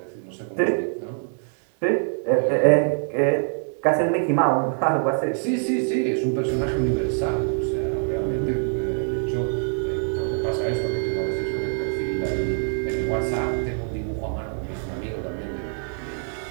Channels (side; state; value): left; silent; 62 dB below the other